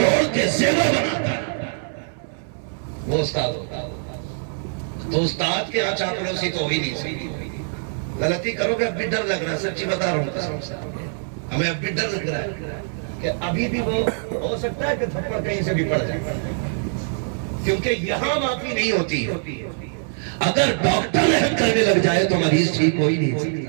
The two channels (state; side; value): silent; left; digital silence